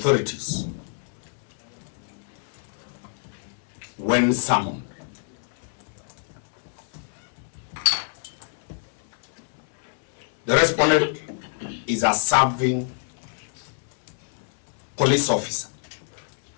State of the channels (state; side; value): silent; right; 61 dB below the other